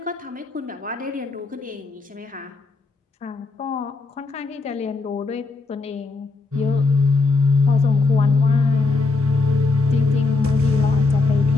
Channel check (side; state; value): right; quieter; 3.7 dB